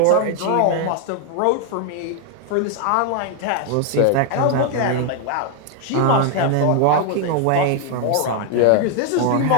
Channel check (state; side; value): different; both; correlation 0.00